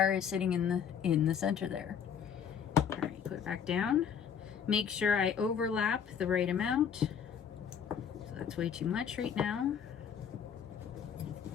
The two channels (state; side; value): quieter; right; 7.6 dB